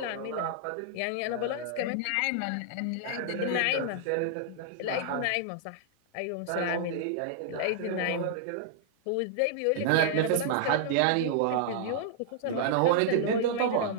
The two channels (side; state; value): both; different; correlation -0.01